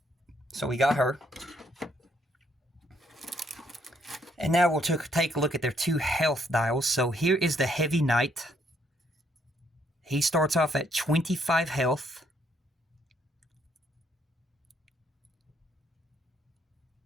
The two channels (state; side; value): normal; both; correlation 0.70